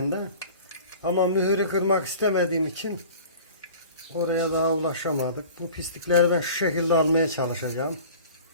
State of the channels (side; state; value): both; inverted; correlation -0.42